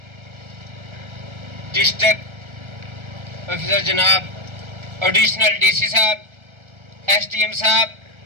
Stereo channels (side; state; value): left; late; 1.3 ms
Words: ڈسٹرکٹ آفیسر جناب ایڈیشنل ڈی سی صاحب، ایس ڈی ایم صاحب